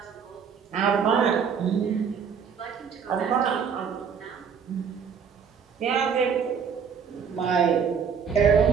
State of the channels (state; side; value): quieter; left; 6.8 dB